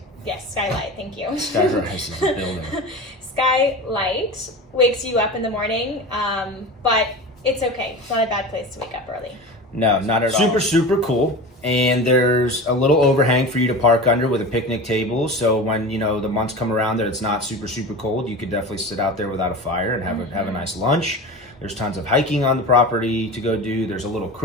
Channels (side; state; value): both; normal; correlation 0.31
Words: Yes, skylight. Thank you. Skyrise is a building. Skylight wakes you up in the morning, but it's okay. It's not a bad place to wake up early. No, not at all. Super cool. And there's a little overhang for you to park under with a picnic table. So when, you know, the months come around that it's not super cold, you could definitely sit out there without a fire and have a nice lunch. There's tons of hiking on the property to go do. There's a little